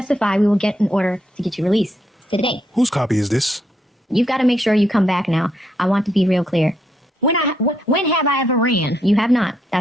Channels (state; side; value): normal; both; correlation 0.76